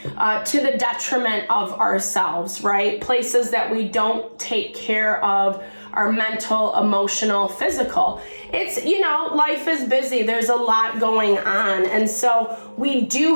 the detriment of ourselves, right? Places that we don't take care of our mental, emotional, physical. It's, life is busy. There's a lot going on. And so we do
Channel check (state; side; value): inverted; both; correlation -1.00